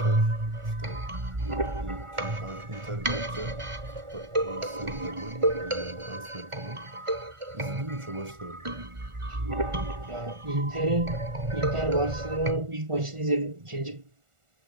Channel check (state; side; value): late; left; 1.4 ms